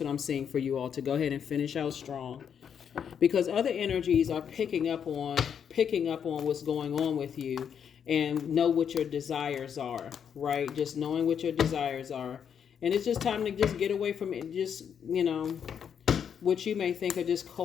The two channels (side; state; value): right; quieter; 7.9 dB